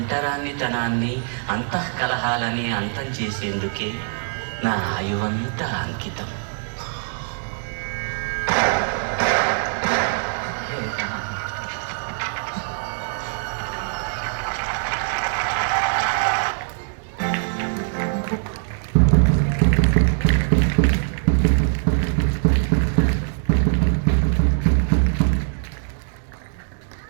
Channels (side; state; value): left; silent; digital silence